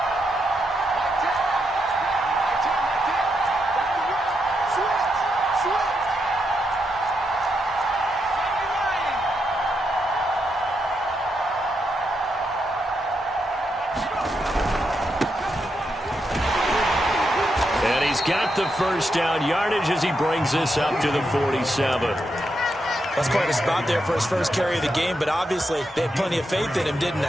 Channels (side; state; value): both; normal; correlation 0.82